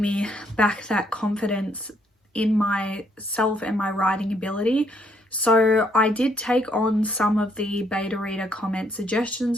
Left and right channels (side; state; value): both; normal; correlation 0.70